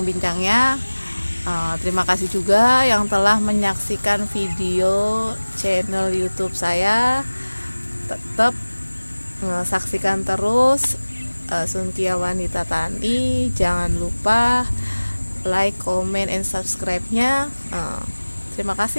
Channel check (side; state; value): both; inverted; correlation -1.00